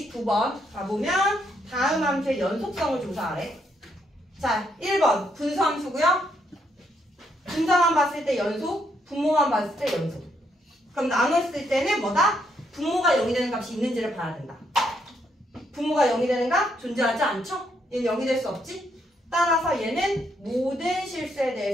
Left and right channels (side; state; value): both; normal; correlation 0.75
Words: 가보면 다음 함수의 연속성을 조사하래. 자, 1번 분수함수고요. 분자만 봤을 때 연속, 분모만 봤을 때 연속. 그럼 나눴을 때는 뭐다? 분모가 0이 되는 값이 있는지를 봐야 된다. 분모가 0이 되는 값 존재하지 않죠? 얘는 0이 될 수 없지? 따라서 얘는 모든 실수에